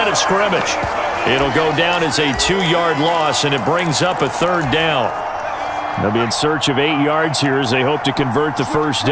of scrimmage. It'll go down as a 2-yard loss, and it brings up a third down. They'll be in search of 8 yards here as they hope to convert the first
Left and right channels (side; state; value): both; identical; correlation 1.00